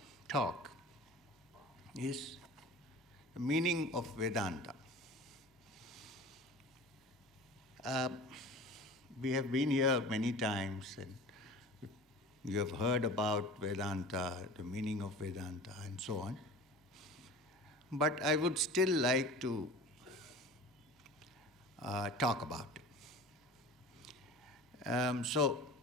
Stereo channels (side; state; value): both; normal; correlation 0.39